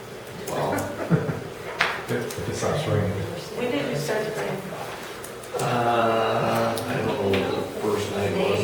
Well, If it stops raining. When did you start to bring? I don't know what the first night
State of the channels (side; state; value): both; identical; correlation 1.00